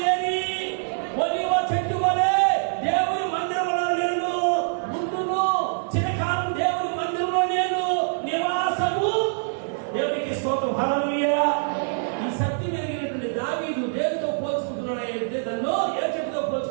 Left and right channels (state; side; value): silent; left; 62 dB below the other